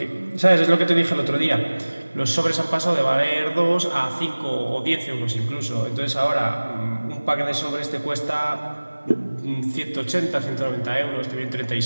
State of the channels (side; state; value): both; inverted; correlation -1.00